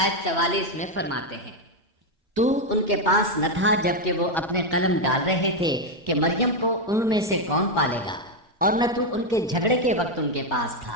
آیت 44 میں فرماتے ہیں، تو ان کے پاس نہ تھا جبکہ وہ اپنے قلم ڈال رہے تھے کہ مریم کو ان میں سے کون پالے گا، اور نہ تو ان کے جھگڑے کے وقت ان کے پاس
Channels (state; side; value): normal; both; correlation 0.04